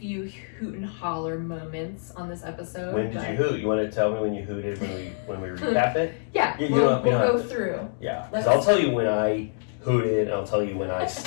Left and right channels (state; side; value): silent; right; digital silence